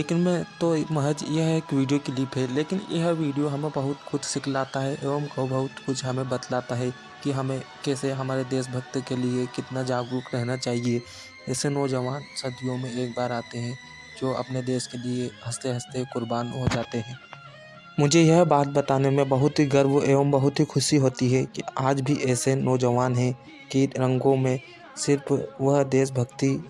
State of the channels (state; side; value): identical; both; correlation 1.00